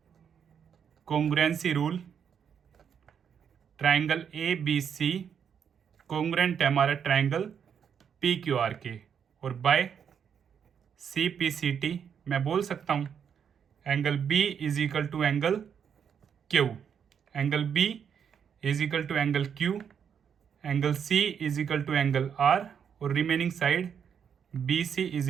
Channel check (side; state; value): left; quieter; 7.6 dB